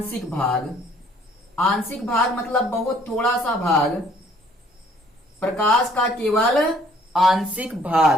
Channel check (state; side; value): normal; both; correlation 0.60